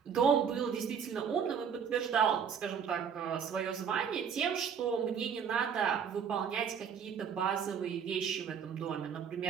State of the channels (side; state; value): left; quieter; 7.2 dB